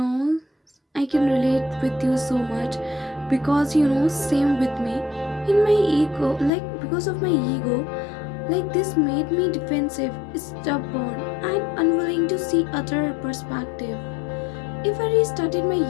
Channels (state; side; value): drops out; right; at 6.5 s